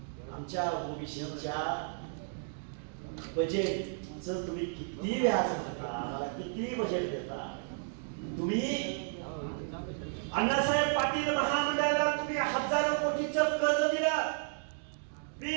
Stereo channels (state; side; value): silent; left; digital silence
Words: आमच्या ओबीसीच्या बजेटचं तुम्ही किती व्याज भरता? आम्हाला किती बजेट देता? तुम्ही अण्णासाहेब पाटील महामंडळाला तुम्ही हजारो कोटीचं कर्ज दिलं,